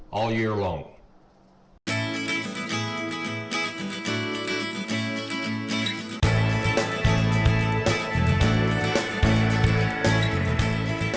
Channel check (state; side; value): identical; both; correlation 1.00